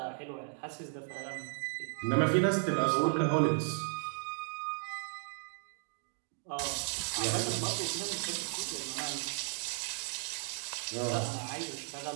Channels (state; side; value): silent; left; 54 dB below the other